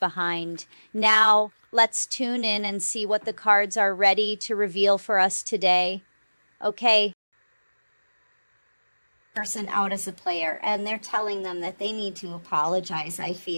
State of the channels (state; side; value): inverted; both; correlation -1.00